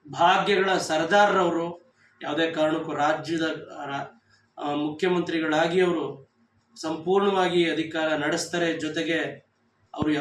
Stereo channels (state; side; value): identical; both; correlation 1.00